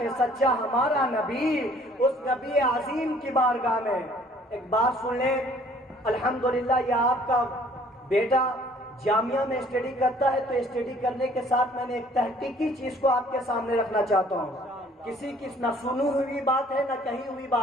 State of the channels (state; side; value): normal; both; correlation 0.57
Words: سچا ہمارا نبی۔ اس نبی عظیم کی بارگاہ میں ایک بات سن لیں، الحمدللہ یہ آپ کا بیٹا جامعہ میں اسٹڈی کرتا ہے، تو اسٹڈی کرنے کے ساتھ میں نے ایک تحقیقی چیز کو آپ کے سامنے رکھنا چاہتا ہوں، کسی کی نہ سنی ہوئی بات ہے نہ کہی ہوئی